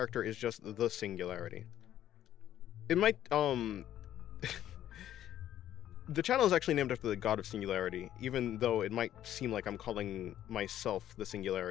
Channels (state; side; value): quieter; right; 11.8 dB